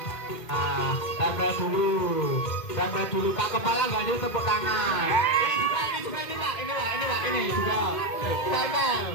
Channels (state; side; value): late; right; 2.1 ms